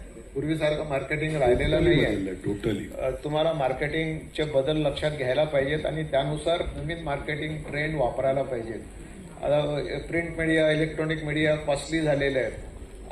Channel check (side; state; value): both; identical; correlation 1.00